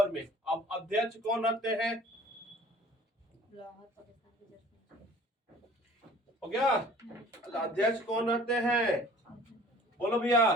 में। अब अध्यक्ष कौन रहते हैं? हो गया? अध्यक्ष कौन रहते हैं? बोलो भैया।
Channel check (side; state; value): both; normal; correlation 0.50